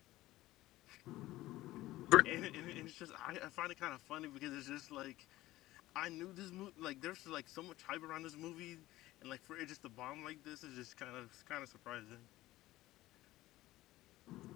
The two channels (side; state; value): right; quieter; 16.8 dB